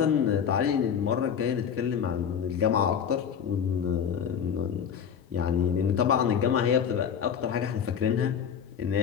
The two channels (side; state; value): right; quieter; 7.8 dB